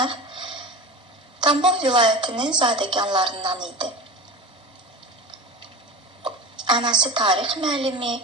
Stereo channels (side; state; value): both; normal; correlation 0.31